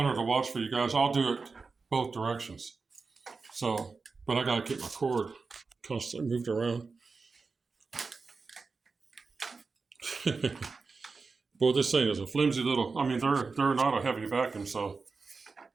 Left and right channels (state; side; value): quieter; left; 4.4 dB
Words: to watch for you guys, I'll do it both directions. So, but I gotta keep my cord constantly moved around. Boy, this thing is a flimsy little, I mean, they're not a heavy vacuum, so,